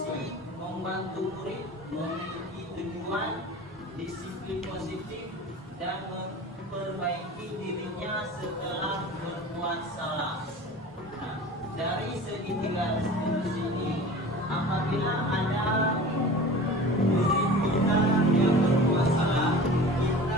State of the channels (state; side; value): normal; both; correlation 0.38